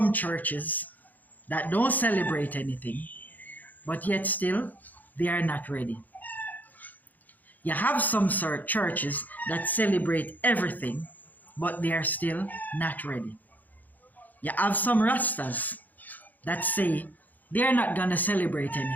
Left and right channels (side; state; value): right; late; 0.083 ms